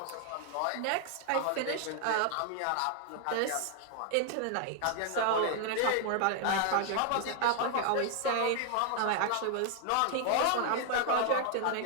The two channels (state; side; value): different; both; correlation 0.00